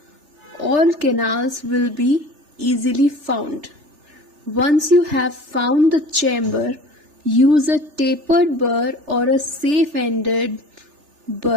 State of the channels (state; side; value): late; left; 3.4 ms